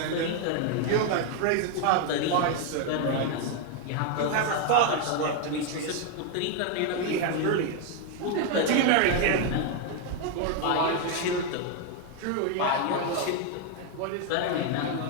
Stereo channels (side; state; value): both; different; correlation 0.01